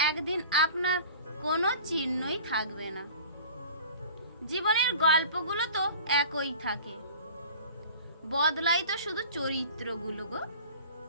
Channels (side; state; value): both; inverted; correlation -0.41